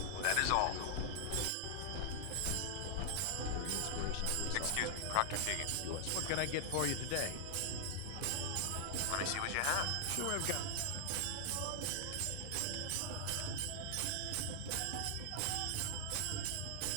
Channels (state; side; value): different; both; correlation 0.00